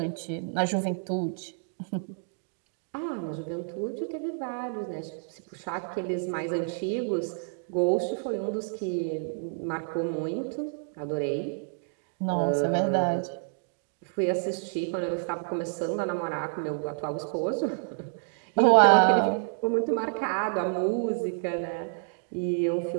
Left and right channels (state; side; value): silent; left; digital silence